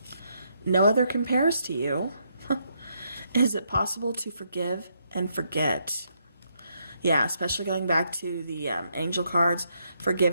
No other compares to you. Is it possible to forgive and forget? Yeah, especially going back to the angel cards,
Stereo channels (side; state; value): both; inverted; correlation -0.76